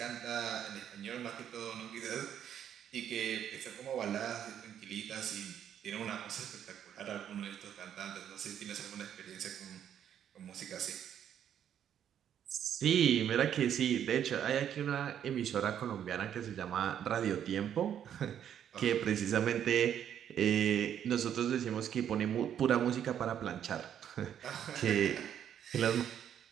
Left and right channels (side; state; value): left; quieter; 9.5 dB